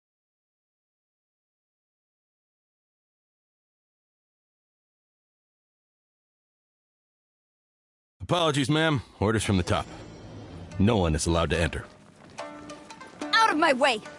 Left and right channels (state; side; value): identical; both; correlation 1.00